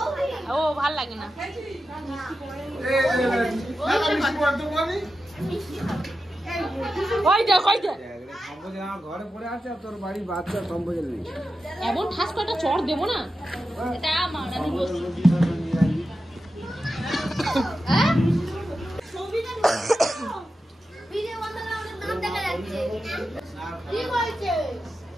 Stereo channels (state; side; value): normal; both; correlation 0.91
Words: ও ভাল লাগে না। ওই দেখ, ওই দেখ ঘরে পড়ে আছে আর তোর বাড়ির বাচ্চা সম্বোধন নেই। এমন ঠাস কটা চড় দেবো না, এটা মারা